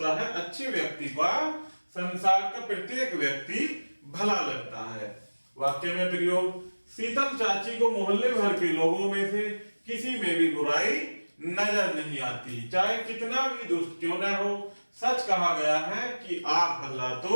है अच्छे व्यक्ति का संसार का प्रत्येक व्यक्ति भला लगता है। वाक्य में प्रयोग शीतल चाची को मोहल्ले भर के लोगों में से किसी में भी बुराई नजर नहीं आती, चाहे कितना भी दुष्ट क्यों न हो। सच कहा गया है कि आप भला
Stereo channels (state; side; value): inverted; both; correlation -1.00